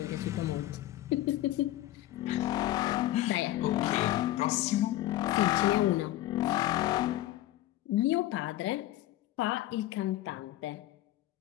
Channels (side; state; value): right; quieter; 15.2 dB